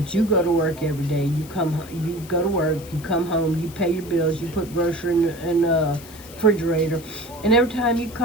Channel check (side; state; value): left; noise; hiss, 19 dB below the sound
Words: you go to work every day. You go to work, you come home, you pay your bills, you put grocery in the refrigerator, and every time you